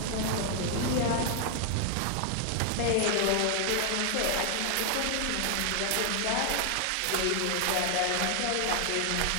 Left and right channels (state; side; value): different; both; correlation 0.00